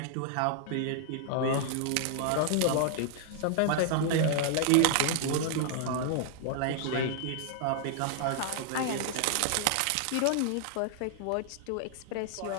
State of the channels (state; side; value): different; both; correlation 0.00